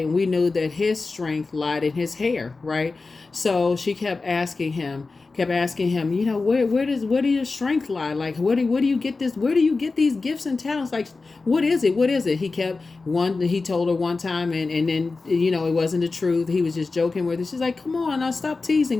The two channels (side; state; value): right; quieter; 3.9 dB